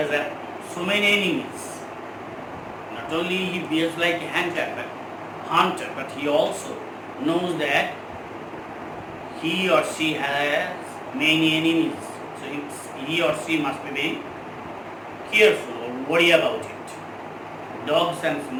so many enemies. Not only he behaves like a hunter, but he also knows that he or she has many enemies. So he or she must be very careful or worry about it. Dogs and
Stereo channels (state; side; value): identical; both; correlation 1.00